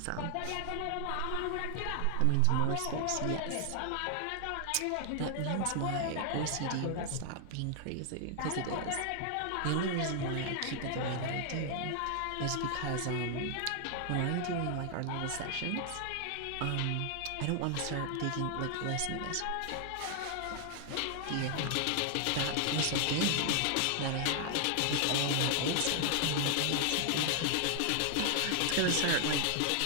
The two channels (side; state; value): both; different; correlation 0.00